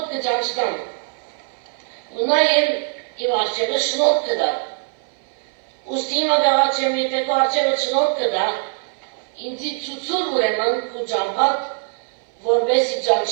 կճանչնամ, ու նաև իմ արջևը շնորհ կդա։ Ուստի հիմա գաղաչեմ, եթե քո արջևը շնորհ կդա, ինձի ցուցուր ուրեմն քո ճամփատ, որպեսզի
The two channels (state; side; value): silent; left; 59 dB below the other